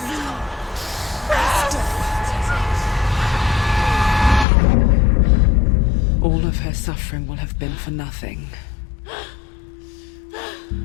All of her suffering will have been for nothing.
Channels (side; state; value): right; drops out; at 4.5 s